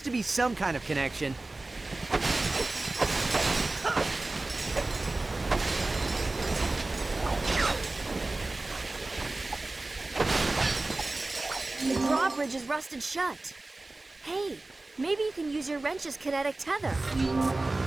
to be some kind of connection. The drawbridge is rusted shut. Hey, maybe you can use your wrench's kinetic tether.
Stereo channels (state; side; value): quieter; left; 3.0 dB